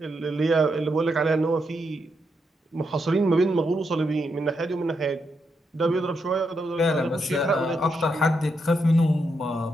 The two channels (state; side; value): normal; both; correlation 0.81